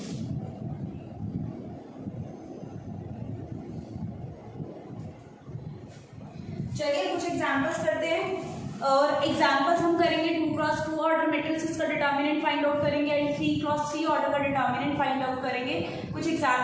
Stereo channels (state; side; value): identical; both; correlation 1.00